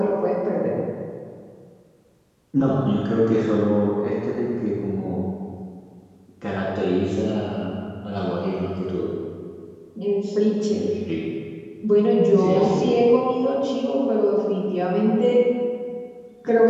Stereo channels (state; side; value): identical; both; correlation 1.00